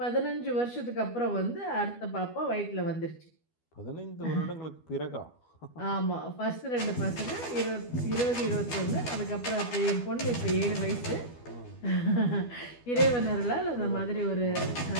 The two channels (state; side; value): late; right; 12 ms